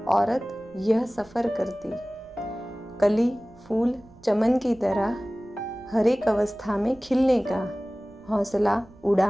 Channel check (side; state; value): right; noise; rumble, 26 dB below the sound